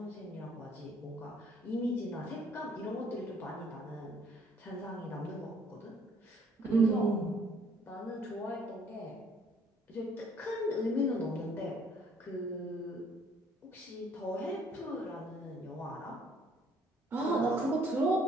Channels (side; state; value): both; normal; correlation 0.62